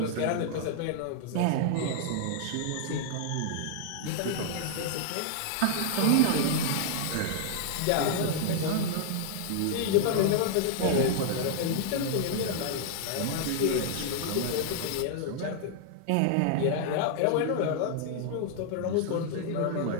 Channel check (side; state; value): both; different; correlation -0.01